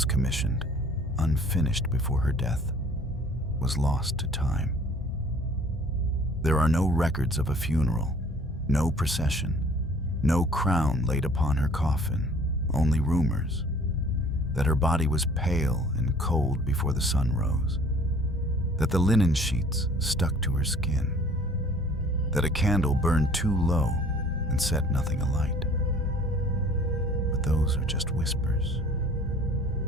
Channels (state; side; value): normal; both; correlation 0.53